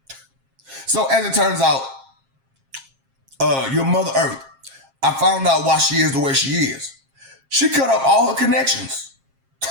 So as it turns out, your Mother Earth, I found out why she is the way she is. She cut off all her connections.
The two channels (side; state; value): left; late; 7.5 ms